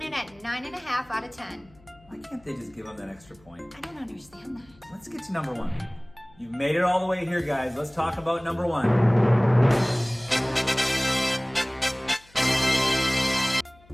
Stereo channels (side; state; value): left; noise; hum, 28 dB below the sound